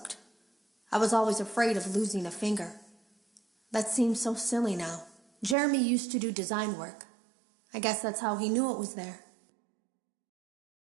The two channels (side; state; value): left; drops out; at 5.6 s